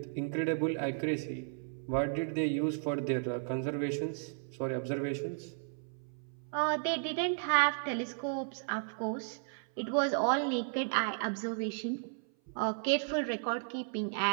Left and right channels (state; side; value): silent; left; 55 dB below the other